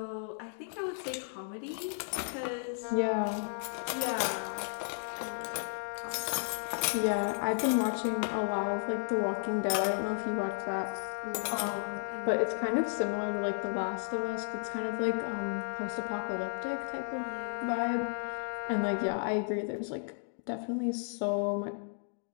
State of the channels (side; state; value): right; silent; digital silence